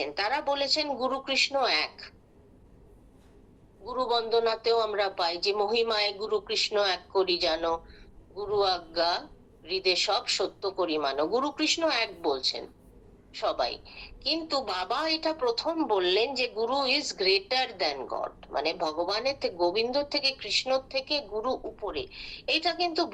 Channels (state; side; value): identical; both; correlation 1.00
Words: তারা বলেছেন গুরু কৃষ্ণ এক। গুরু বন্দনাতেও আমরা পাই যে মহিমায় গুরু কৃষ্ণ এক করি জানো, গুরু আজ্ঞা হৃদে সব সত্য করি মানো। গুরু কৃষ্ণ এক বলছেন সবাই, কিন্তু বাবা এটা প্রথম বললেন যে গুরু ইজ গ্রেটার দ্যান গড, মানে ভগবানের থেকে, গোবিন্দ থেকে, কৃষ্ণর থেকে গুরু উপরে। এটা কিন্তু